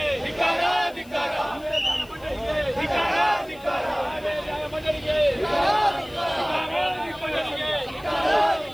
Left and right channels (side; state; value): left; noise; hiss, 25 dB below the sound